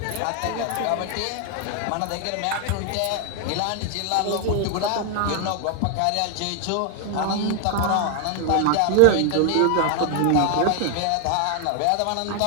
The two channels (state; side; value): different; both; correlation 0.00